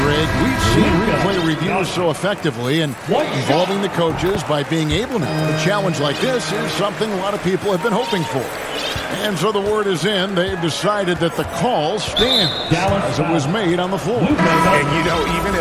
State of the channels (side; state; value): both; identical; correlation 1.00